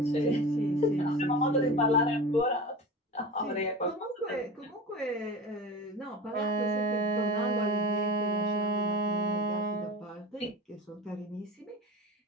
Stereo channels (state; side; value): normal; both; correlation 0.32